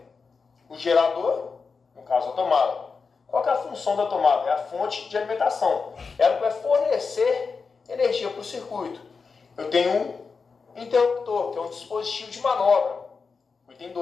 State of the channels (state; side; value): quieter; right; 4.9 dB